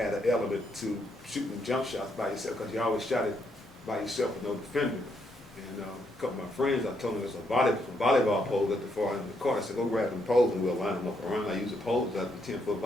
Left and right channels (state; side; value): normal; both; correlation 0.76